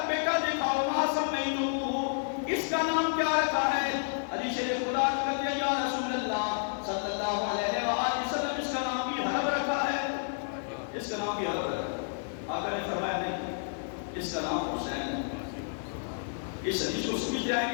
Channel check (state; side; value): silent; right; 57 dB below the other